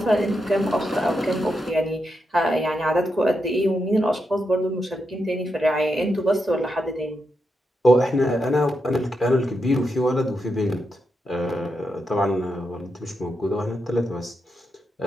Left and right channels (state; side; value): normal; both; correlation 0.85